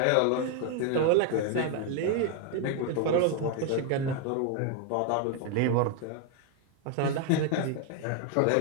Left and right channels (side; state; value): both; different; correlation 0.00